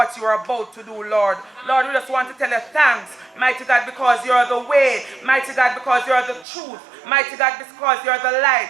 you are about to do, Lord. Lord, we just want to tell you thanks, mighty God, because you are the way, mighty God, because you are the truth, mighty God, because you are the light.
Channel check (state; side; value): drops out; left; at 6.5 s